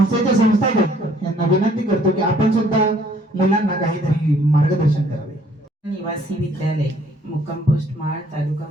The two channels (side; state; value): both; normal; correlation 0.61